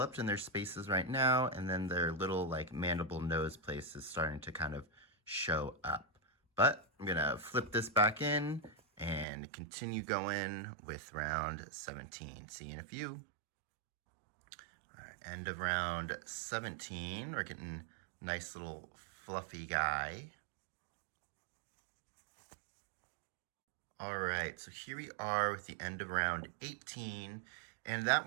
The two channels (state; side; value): drops out; left; at 9.2 s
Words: in their spaces right now, and then their little like mandible nose place is starting to kind of show up. But I'm gonna flip this back in and continue going with round 17. See you in a few. All right, end of round 17. We're getting a nice little fluffy guy. All right, so here we are with the end of round 18. And that